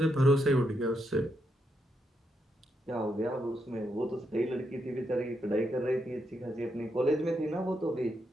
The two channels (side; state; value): both; normal; correlation 0.81